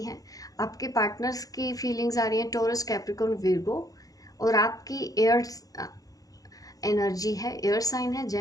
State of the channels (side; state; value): right; late; 0.17 ms